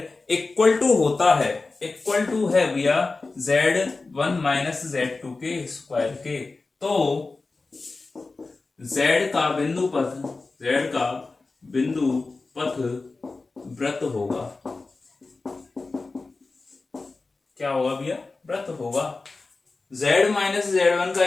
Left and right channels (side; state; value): right; quieter; 3.7 dB